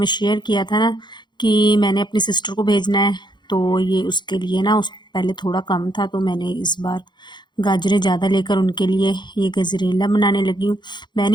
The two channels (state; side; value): late; right; 0.22 ms